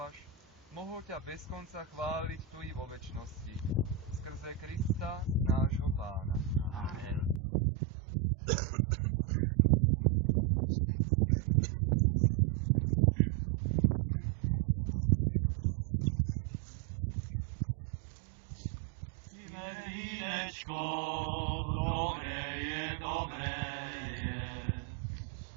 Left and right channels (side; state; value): left; drops out; at 7.4 s